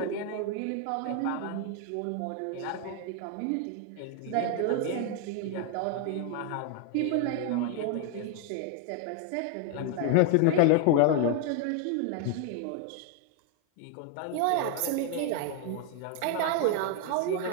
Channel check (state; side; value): different; both; correlation 0.01